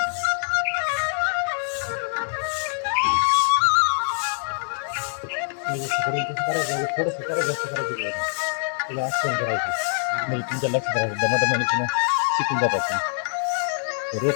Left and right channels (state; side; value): silent; right; 62 dB below the other